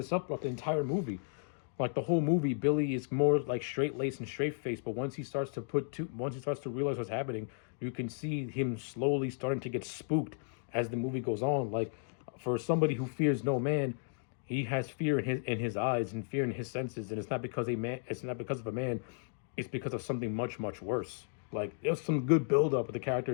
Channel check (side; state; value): right; silent; digital silence